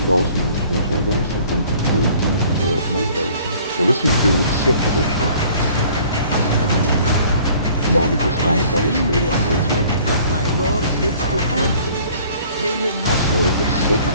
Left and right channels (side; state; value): both; inverted; correlation -0.53